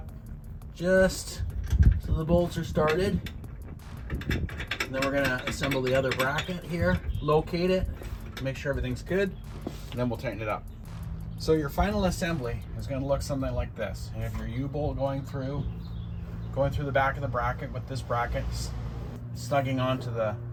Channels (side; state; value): both; identical; correlation 1.00